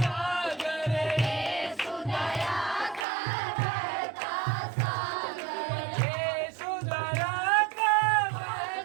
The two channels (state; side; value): drops out; left; at 3.1 s